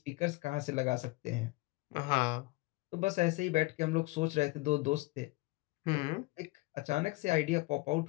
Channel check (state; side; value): quieter; right; 22.6 dB